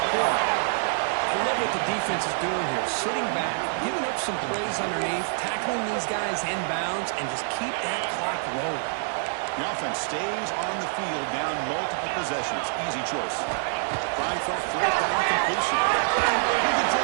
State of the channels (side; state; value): left; silent; 61 dB below the other